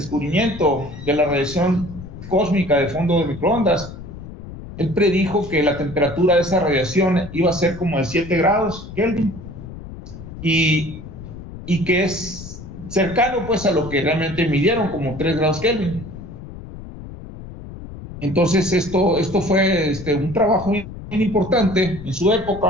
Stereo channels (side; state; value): left; noise; rumble, 13 dB below the sound